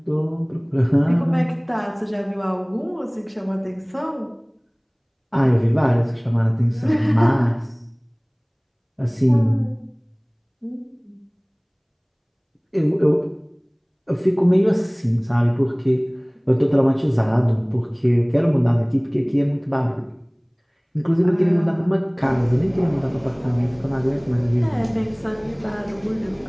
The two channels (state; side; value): identical; both; correlation 1.00